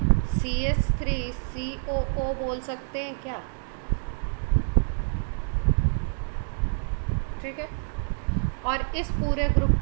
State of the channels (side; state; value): left; silent; digital silence